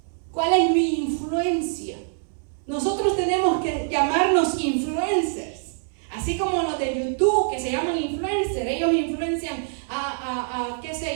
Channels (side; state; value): left; silent; 61 dB below the other